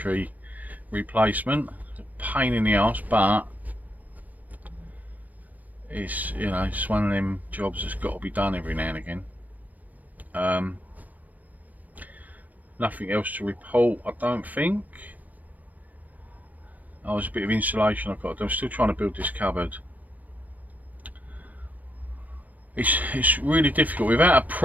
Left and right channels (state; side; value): late; left; 0.079 ms